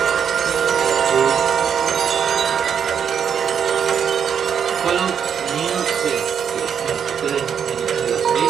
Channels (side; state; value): left; quieter; 7.7 dB